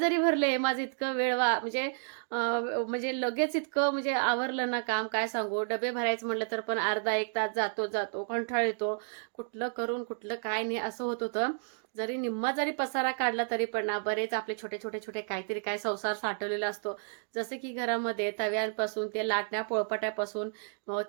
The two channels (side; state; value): left; silent; digital silence